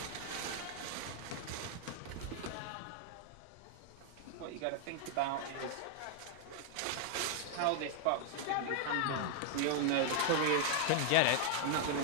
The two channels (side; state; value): both; different; correlation 0.00